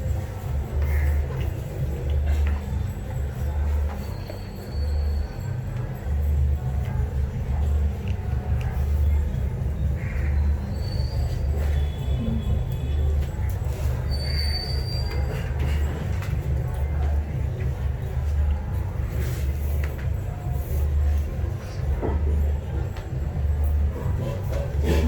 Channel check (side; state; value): both; identical; correlation 1.00